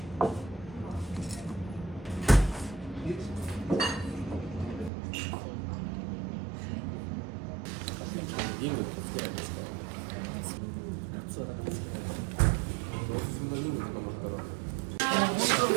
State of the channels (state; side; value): drops out; left; at 4.9 s